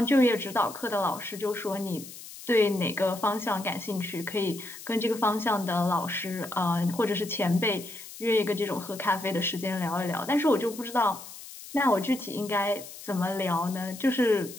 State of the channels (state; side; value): noise; left; hiss, 14 dB below the sound